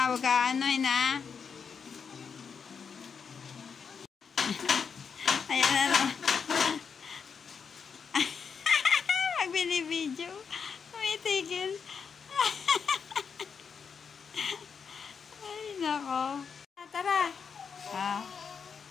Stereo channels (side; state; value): right; quieter; 6.2 dB